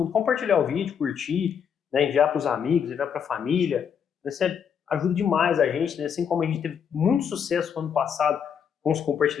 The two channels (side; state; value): right; quieter; 7.6 dB